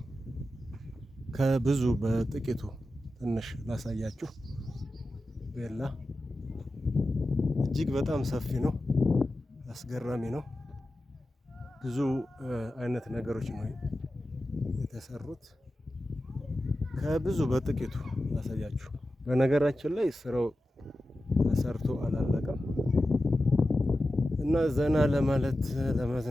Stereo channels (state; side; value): normal; both; correlation 0.93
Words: ከብዙ በጥቂቱ ትንሽ ላሳያችሁ። ቤላ እጅግ በጣም ሰፊ ነው፣ አስገራሚ ነው። ብዙ አይነት ነገሮች ነው የተሰሩት። ከብዙ በጥቂቱ ላሳያችሁ። በነገራችን ላይ ስራው ተሰርቶ አላለቀም እና ዘና ለማለት